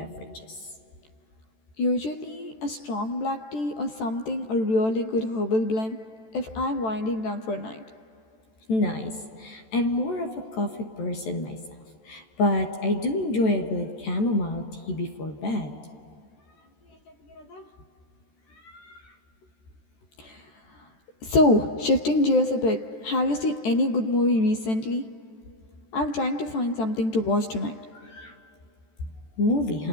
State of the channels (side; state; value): right; late; 14 ms